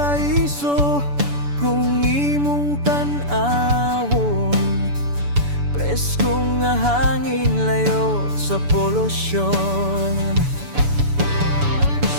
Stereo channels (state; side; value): late; left; 7.0 ms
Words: kung imong tan-awon, preskong nga hangin layo sa polusyon.